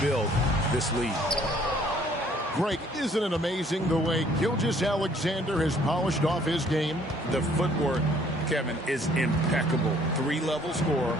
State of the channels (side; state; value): both; normal; correlation 0.60